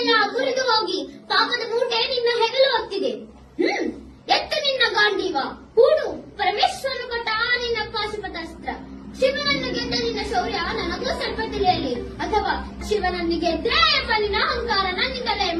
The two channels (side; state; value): both; identical; correlation 1.00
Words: ಮುರಿದು ಹೋಗಿ ಪಾಪದ ಮೂಟೆ ನಿನ್ನ ಹೆಗಲು ಹೊತ್ತಿದೆ. ಎತ್ತು ನಿನ್ನ ಗಾಂಡೀವ, ಹೂಡು ಪರಮೇಶ್ವರನು ಕೊಟ್ಟ ನಿನ್ನ ಪಾಶುಪತಾಸ್ತ್ರ. ಶಿವನನ್ನು ಗೆದ್ದ ನಿನ್ನ ಶೌರ್ಯ ನನಗೂ ಸ್ವಲ್ಪ ತಿಳಿಯಲಿ, ಅಥವಾ ಶಿವನನ್ನು ಗೆದ್ರೆ ಎಂಬ ನಿನ್ನ ಅಹಂಕಾರ ನನ್ನಿಂದಲೇ